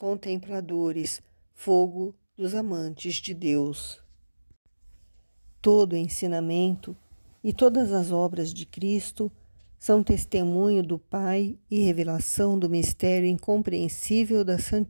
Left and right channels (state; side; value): inverted; both; correlation -1.00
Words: fogo dos amantes de Deus. Todo o ensinamento e todas as obras de Cristo são testemunho do Pai e revelação do mistério incompreensível da